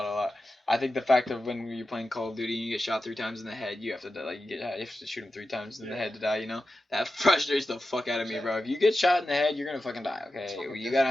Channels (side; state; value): both; normal; correlation 0.92